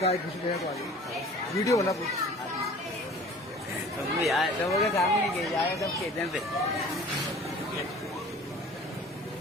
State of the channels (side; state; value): both; normal; correlation 0.46